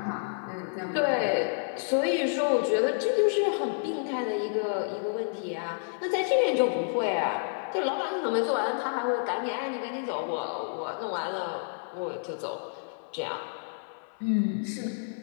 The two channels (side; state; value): right; silent; 58 dB below the other